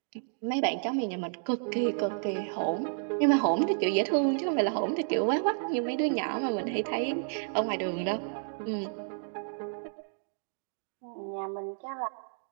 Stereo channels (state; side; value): silent; left; digital silence